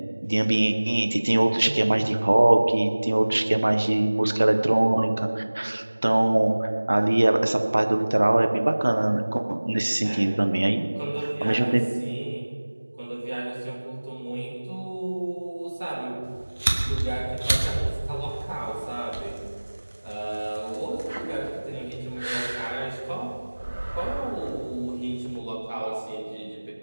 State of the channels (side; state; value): both; inverted; correlation -1.00